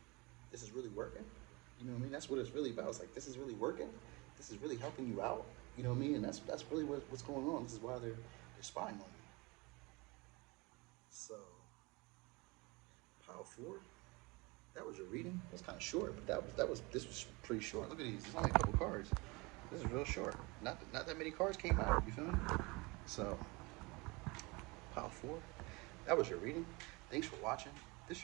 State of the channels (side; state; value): left; quieter; 25.9 dB